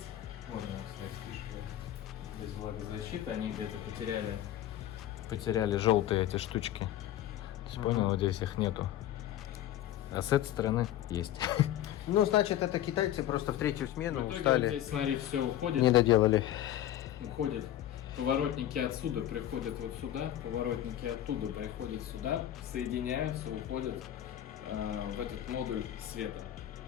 Вот она, кстати, фишка. Без влагозащиты. Они где-то потеряли желтые эти штучки. То есть, понял, вот здесь их нету. А с этой стороны есть. Ну, значит, это китайцы просто в третью смену В итоге устали. вот здесь, смотри, все уходит. Не доделали. Уходят поворотники отсюда, приходят вот сюда, поворотники оттуда приходят сюда, соединяются, уходят в этот модуль света.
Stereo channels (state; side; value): quieter; right; 12.5 dB